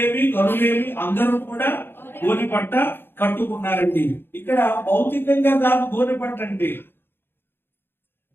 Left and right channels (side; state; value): right; late; 0.10 ms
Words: గరులేమి అందరూ కూడా గోనె పట్ట కట్టుకున్నారండి. ఇక్కడ భౌతికంగా కాదు గోనె పట్ట అంటే,